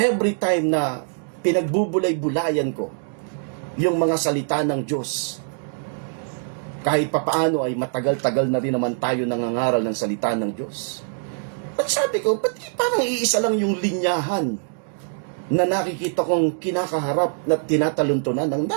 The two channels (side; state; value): left; silent; digital silence